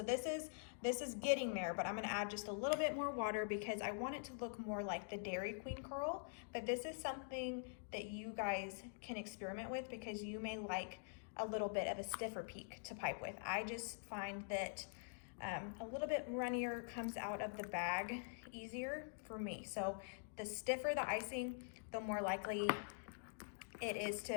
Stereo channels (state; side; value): silent; right; digital silence